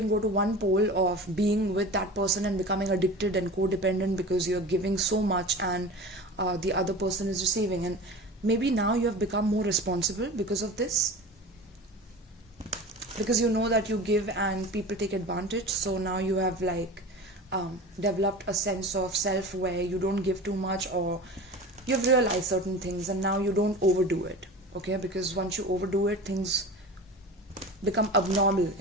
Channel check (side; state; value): both; normal; correlation 0.34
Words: go to one pole of being with that person and becoming addicted and codependent because you're giving so much and the other person is receiving, and maybe now you have become more responsible because of this, because you know that you give and people take advantage. So now you have like developed a sense of self where you don't give too much, or you've realized certain things and now you don't overdo it. Okay, because once you overdo it, things become abnormal